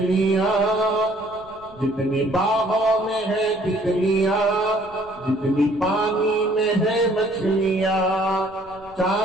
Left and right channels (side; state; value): right; noise; rumble, 26 dB below the sound